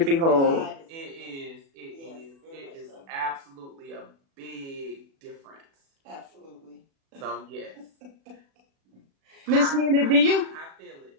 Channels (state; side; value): late; left; 36 ms